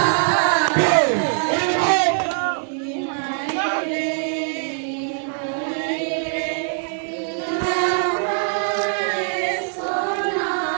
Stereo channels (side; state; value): left; silent; digital silence